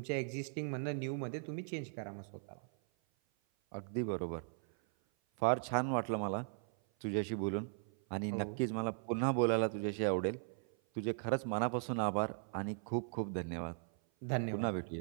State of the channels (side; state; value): left; silent; 52 dB below the other